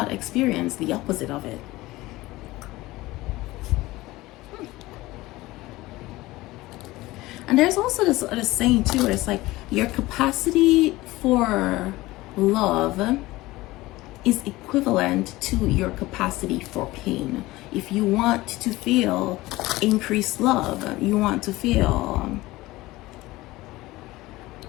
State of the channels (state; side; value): quieter; right; 19.0 dB